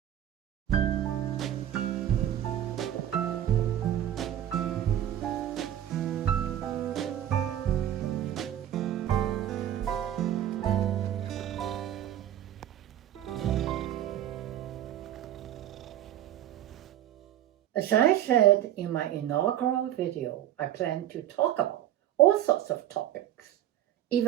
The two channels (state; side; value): quieter; left; 11.7 dB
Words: As I said in my inaugural video, I plan to talk about all sorts of topics,